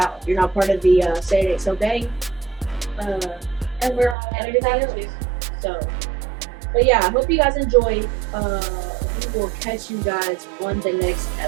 You're not part of the Say It Ain't So gang. And we're on everything else. So, but yeah, I hope you guys enjoyed. We will catch you guys on the next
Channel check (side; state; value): left; drops out; at 4.2 s